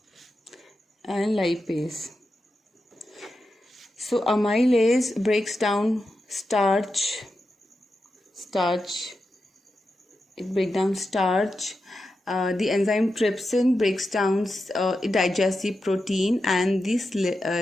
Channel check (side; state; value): both; normal; correlation 0.89